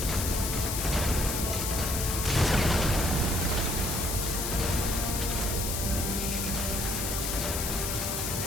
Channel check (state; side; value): noise; left; hiss, 2 dB below the sound